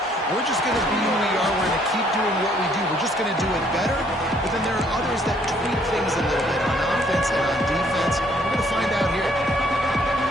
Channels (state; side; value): normal; both; correlation 0.64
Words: we're just going to be who we are. We're going to keep doing what we do. We're just going to do it better. But then there are others that tweak things a little bit on offense and on defense. We're going to find out here.